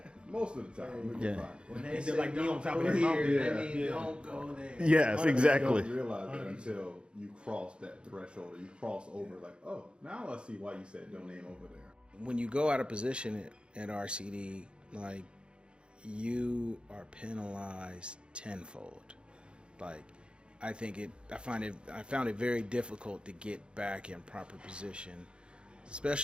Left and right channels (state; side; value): late; left; 0.055 ms